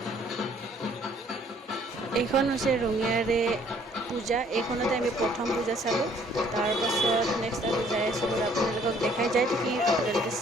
এইখন হৈছে ৰঙিয়াৰে পূজা। এইখনতে আমি প্ৰথম পূজা চালোঁ। তাৰপাছত নেক্সট আৰু যাই আছোঁ বাৰু, আপোনালোকক দেখাই যাই থাকিম, আপোনালোকে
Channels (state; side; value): normal; both; correlation 0.60